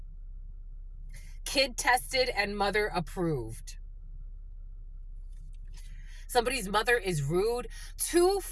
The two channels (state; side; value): identical; both; correlation 1.00